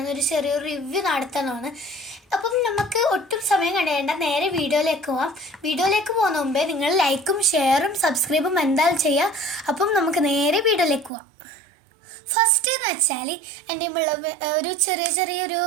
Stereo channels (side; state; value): left; drops out; at 11.1 s